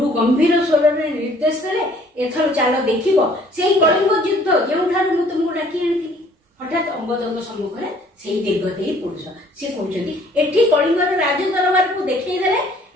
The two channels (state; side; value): normal; both; correlation 0.58